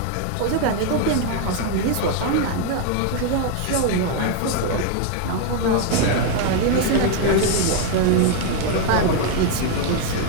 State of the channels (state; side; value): different; both; correlation 0.01